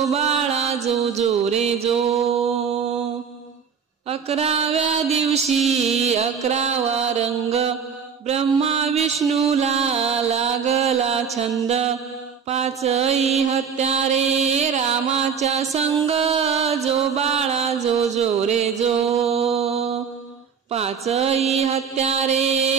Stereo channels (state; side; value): quieter; left; 6.7 dB